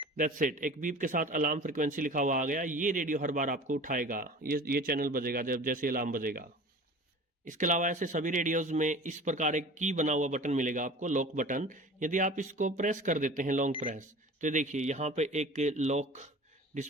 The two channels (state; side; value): normal; both; correlation 0.40